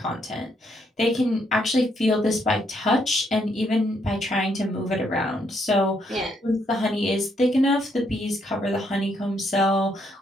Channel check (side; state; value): both; normal; correlation 0.74